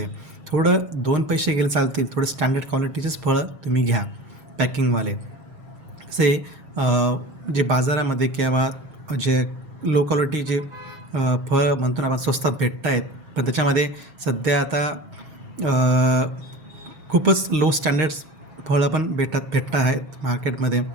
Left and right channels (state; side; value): late; left; 7.4 ms